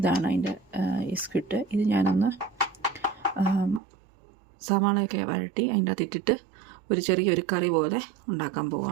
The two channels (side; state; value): left; drops out; at 3.8 s